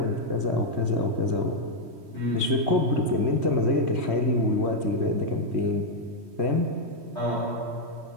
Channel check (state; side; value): late; left; 3.2 ms